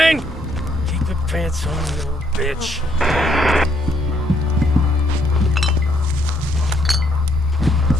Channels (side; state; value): both; normal; correlation 0.71